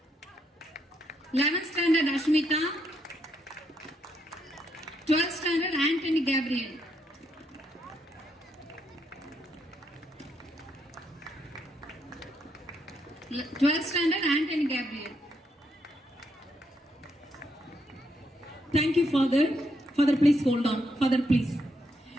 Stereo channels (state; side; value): normal; both; correlation 0.77